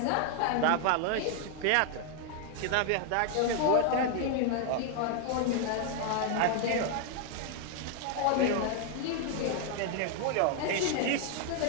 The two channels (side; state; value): both; different; correlation 0.00